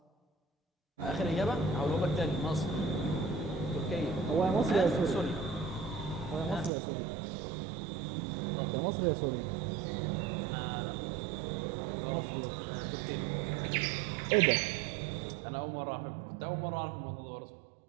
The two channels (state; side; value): drops out; left; at 6.7 s